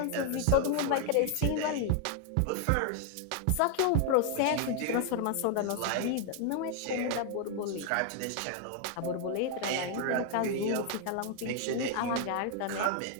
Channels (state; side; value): different; both; correlation 0.00